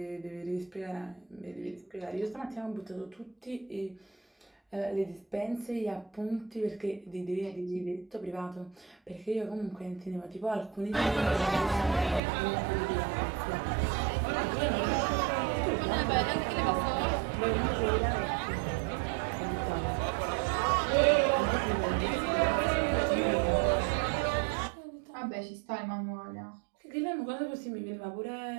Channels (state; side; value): drops out; left; at 12.2 s